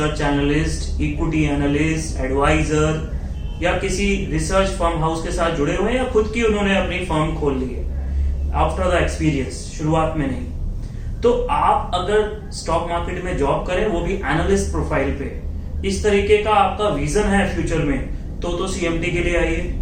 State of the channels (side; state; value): both; identical; correlation 1.00